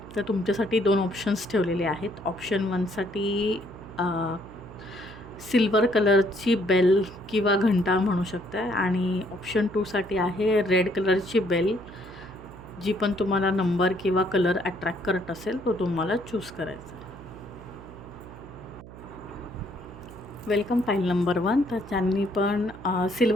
तर तुमच्यासाठी 2 ऑप्शन्स ठेवलेले आहेत. ऑप्शन 1साठी सिल्वर कलरची बेल किंवा घंटा म्हणू शकता आणि ऑप्शन 2साठी आहे रेड कलरची बेल. जी पण तुम्हाला नंबर किंवा कलर अट्रॅक्ट करत असेल तो तुम्हाला चूज करायचा. Welcome file number 1. तर ज्यांनी पण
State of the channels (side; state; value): right; noise; hum, 16 dB below the sound